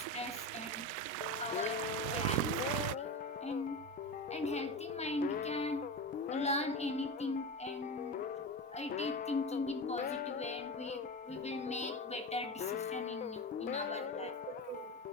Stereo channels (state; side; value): normal; both; correlation 0.23